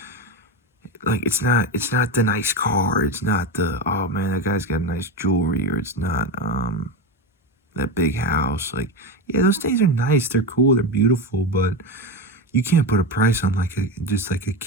like, it's not the nice car, it's not the, oh man, that guy's got nice jewelry, or it's not that big house. Like, yeah, those things are nice, they're cool, they're beautiful, but you can't put a price on just like a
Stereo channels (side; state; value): both; normal; correlation 0.18